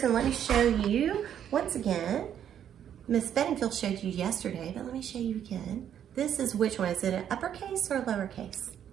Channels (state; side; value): quieter; left; 9.6 dB